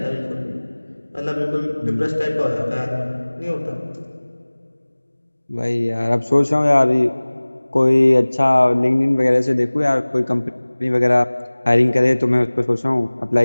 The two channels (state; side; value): inverted; both; correlation -1.00